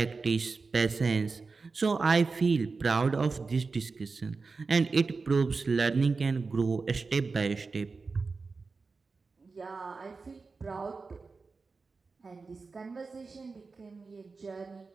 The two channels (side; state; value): left; quieter; 4.3 dB